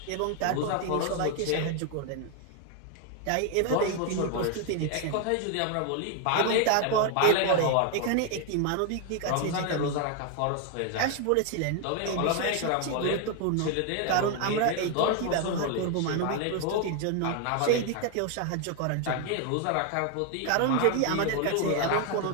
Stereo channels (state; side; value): different; both; correlation 0.01